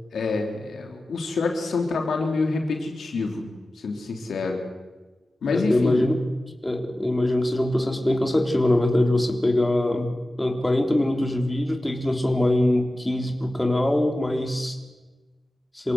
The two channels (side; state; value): both; normal; correlation 0.95